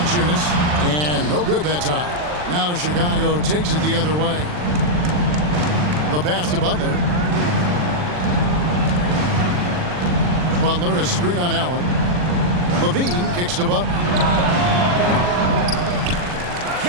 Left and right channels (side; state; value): left; late; 40 ms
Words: And no good that time. Now Chicago takes it the other way. The pass to Butler. Butler, a screen on Allen. LaVine kicks to Butler.